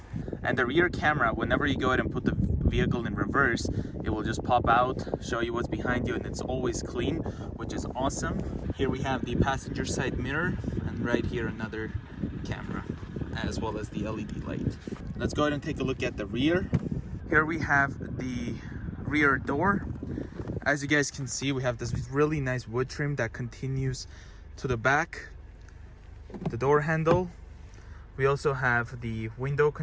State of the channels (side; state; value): both; identical; correlation 1.00